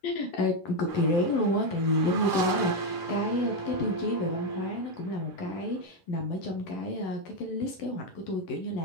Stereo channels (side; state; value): right; late; 11 ms